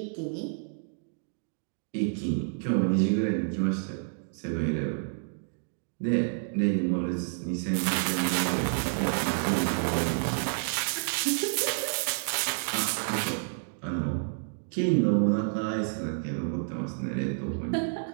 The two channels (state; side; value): silent; left; digital silence